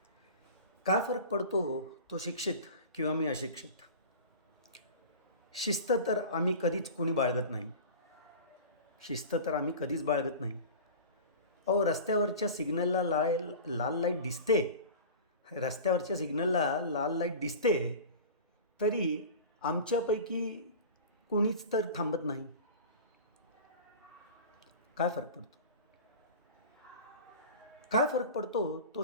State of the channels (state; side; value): inverted; both; correlation -0.35